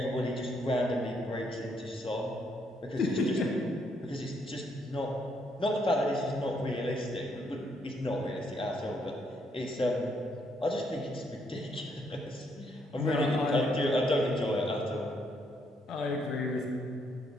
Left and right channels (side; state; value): both; normal; correlation 0.73